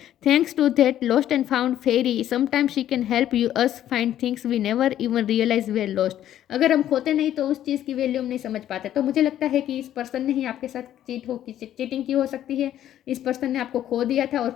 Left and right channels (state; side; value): quieter; right; 11.7 dB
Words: Thanks to that lost and found fairy sometimes she can help you us find things we never even realise we lost. अगर हम खोते नहीं तो उस चीज़ की वैल्यू हम नहीं समझ पाते। तो मुझे लगता है कि इस पर्सन ने ही आपके साथ चीटिंग की हो सकती है। इस पर्सन ने आपको खो दिया था और